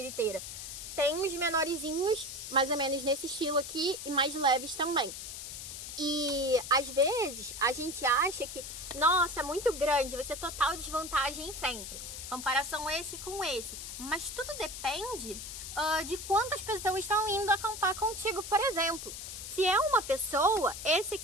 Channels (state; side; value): noise; left; hiss, 9 dB below the sound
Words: Tem uns menorzinhos, mais ou menos nesse estilo aqui, e mais leves também. E às vezes a gente acha que, nossa, é muito grande, vai ser total desvantagem sempre. Comparação esse com esse. Mas tudo depende de quantas pessoas estão indo acampar contigo, por exemplo. Se é uma pessoa, esse